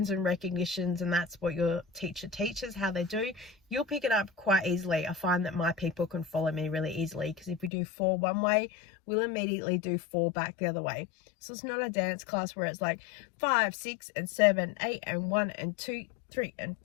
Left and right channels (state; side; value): drops out; right; at 7.7 s